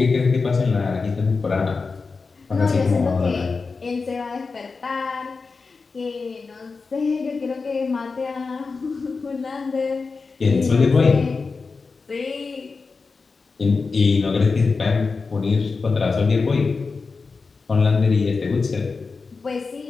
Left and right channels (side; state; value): right; quieter; 4.4 dB